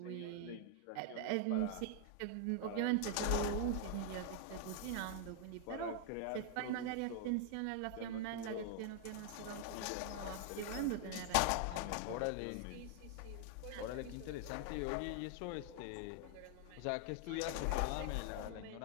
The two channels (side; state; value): both; different; correlation 0.00